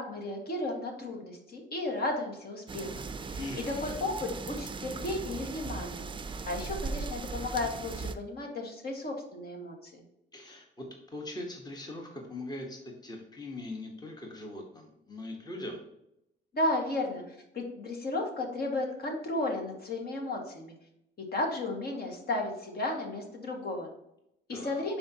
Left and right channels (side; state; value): both; normal; correlation 0.23